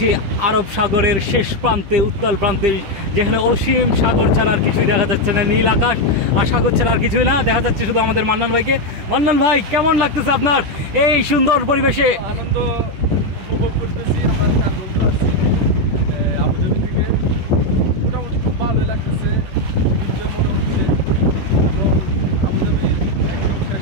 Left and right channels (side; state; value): left; late; 10 ms